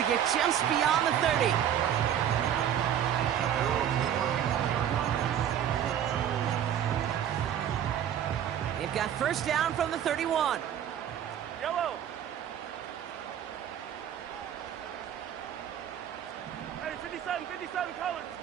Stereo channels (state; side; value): quieter; left; 9.8 dB